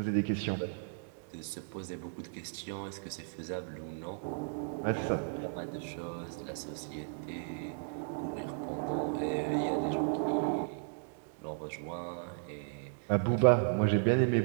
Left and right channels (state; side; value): silent; left; digital silence